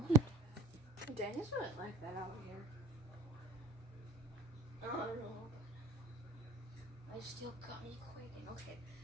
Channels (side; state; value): left; quieter; 3.5 dB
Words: Dang, it's not like that out here. I don't know. I still got me quaking. Okay,